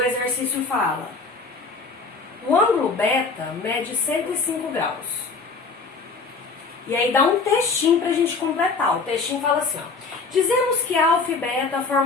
exercício fala, o ângulo beta mede 105 graus. E aí dá um textinho pra gente completar. O textinho fala assim, ó. Dizemos que alfa e beta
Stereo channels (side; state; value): right; quieter; 4.4 dB